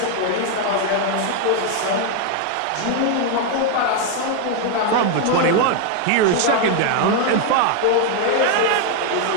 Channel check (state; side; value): different; both; correlation 0.01